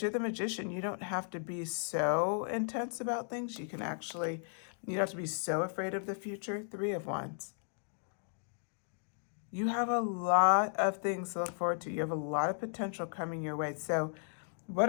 you're the Magician. You don't have to be so intense about things. You don't have to be so afraid of the future. 3 of Wands. You have a lot of things to look forward to. You have a lot of potential coming your way. So what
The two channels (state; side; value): silent; right; digital silence